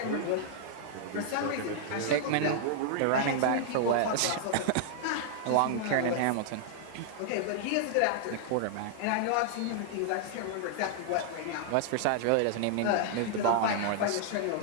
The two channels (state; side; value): different; both; correlation -0.01